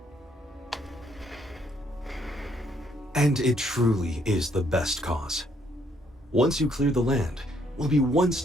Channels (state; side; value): normal; both; correlation 0.69